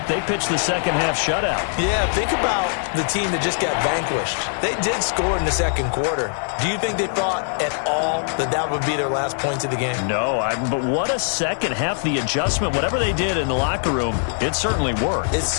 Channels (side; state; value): right; silent; digital silence